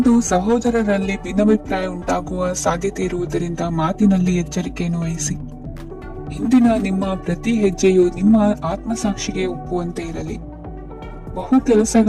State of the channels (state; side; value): identical; both; correlation 1.00